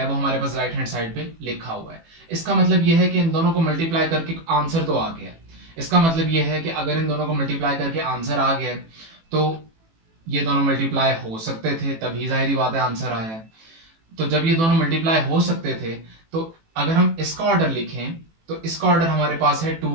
वो हमारे पास राइट हैंड साइड पे लिखा हुआ है। इसका मतलब ये है कि इन दोनों को मल्टीप्लाई करके आंसर तो आ गया। इसका मतलब ये है कि अगर इन दोनों को मल्टीप्लाई करके आंसर आ गया तो ये दोनों मल्टीप्लाई हो सकते थे, तभी जाहिर बात है आंसर आया है। तो जब ये दोनों मल्टीप्लाई हो सकते थे तो अगर हम इसका ऑर्डर लिखें तो इसका ऑर्डर हमारे पास है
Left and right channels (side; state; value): left; late; 18 ms